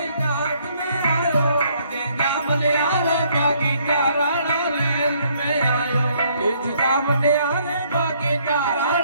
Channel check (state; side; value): inverted; both; correlation -0.66